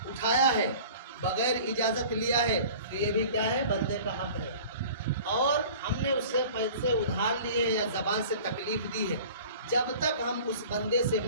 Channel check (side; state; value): both; inverted; correlation -0.43